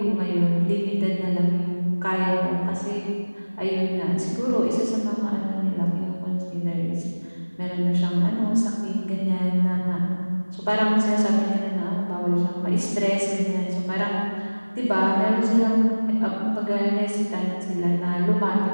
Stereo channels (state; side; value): inverted; both; correlation -1.00